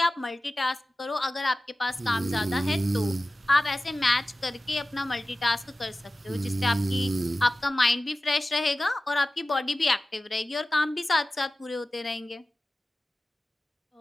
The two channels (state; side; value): normal; both; correlation 0.96